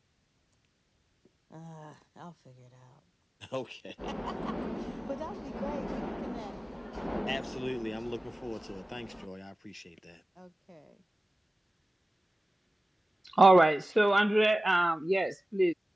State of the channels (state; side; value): normal; both; correlation 0.96